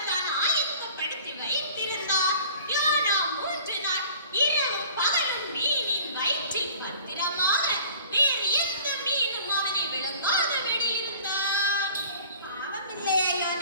தான் ஆயத்தப்படுத்தி வைத்திருந்தார். யோனா 3 நாள் இரவும் பகலும் மீனின் வயிற்றில் பத்திரமாக வேறு எந்த மீனும் அவனை விழுங்காதபடி இருந்தார். பாவமில்லையா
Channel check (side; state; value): both; inverted; correlation -0.47